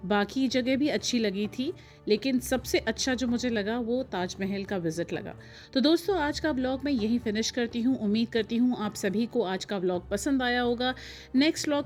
बाकी जगह भी अच्छी लगी थी लेकिन सबसे अच्छा जो मुझे लगा वो ताजमहल का विज़िट लगा। तो दोस्तों आज का व्लॉग मैं यहीं फिनिश करती हूँ। उम्मीद करती हूँ आप सभी को आज का व्लॉग पसंद आया होगा। नेक्स्ट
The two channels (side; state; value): both; identical; correlation 1.00